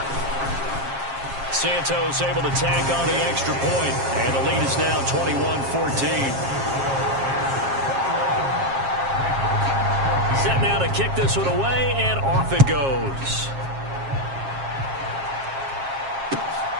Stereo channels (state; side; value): late; left; 7.4 ms